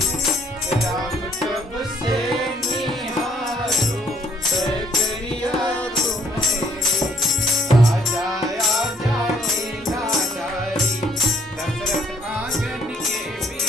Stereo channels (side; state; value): both; normal; correlation 0.65